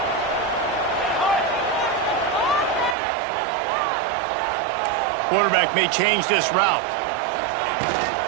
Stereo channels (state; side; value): drops out; left; at 3.0 s